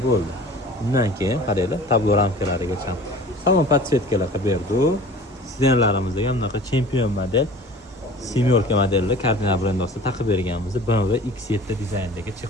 bo'ldi. Undan keyin qaranglar, tablo ramkalarigacha salon podsetkalar qilib berdi. Sidenlarimizga bunaqa chempion model semyorka modelli kardinal brend ostida taqib berganmiz. BMW X7 dizaynidagi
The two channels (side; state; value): both; normal; correlation 0.43